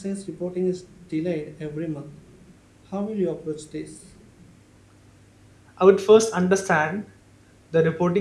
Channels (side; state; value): both; identical; correlation 1.00